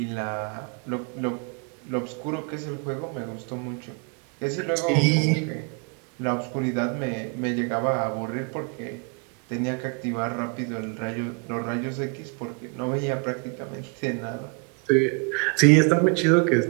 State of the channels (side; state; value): left; quieter; 35.9 dB